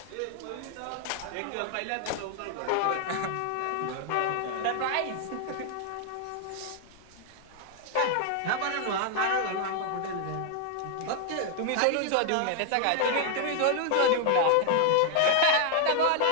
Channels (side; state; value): both; different; correlation 0.00